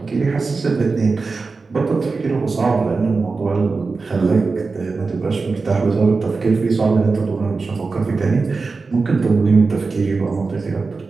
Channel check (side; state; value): left; quieter; 4.2 dB